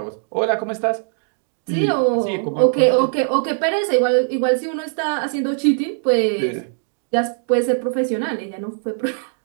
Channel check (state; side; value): silent; left; digital silence